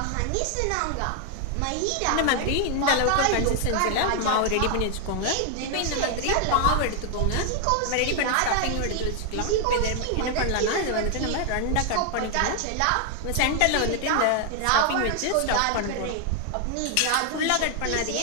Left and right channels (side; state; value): both; different; correlation 0.00